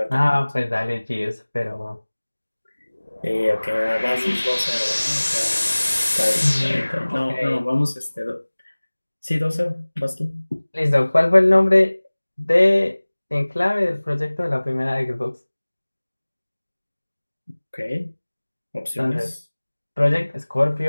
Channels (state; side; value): inverted; both; correlation -1.00